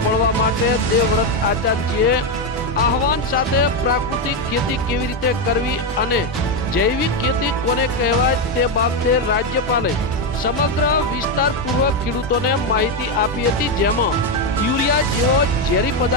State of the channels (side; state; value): both; normal; correlation 0.07